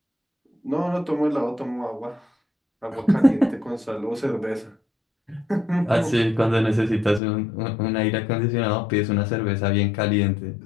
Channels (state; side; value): drops out; right; at 7.2 s